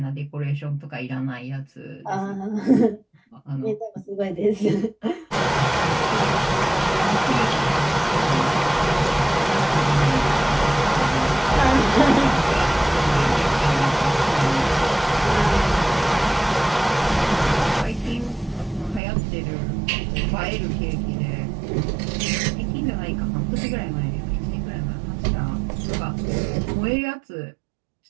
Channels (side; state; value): left; drops out; at 19.0 s